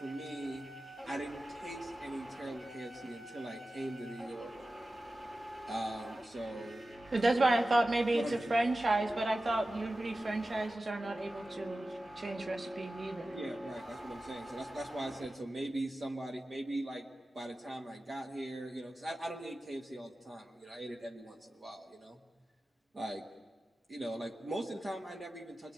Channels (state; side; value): normal; both; correlation 0.95